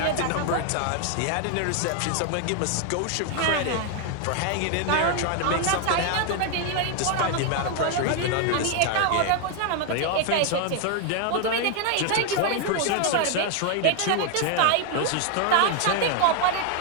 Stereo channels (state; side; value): different; both; correlation 0.01